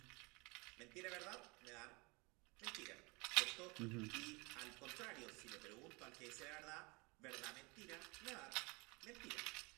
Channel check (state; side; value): quieter; left; 27.4 dB